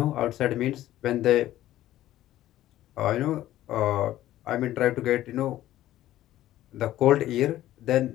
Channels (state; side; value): quieter; right; 14.0 dB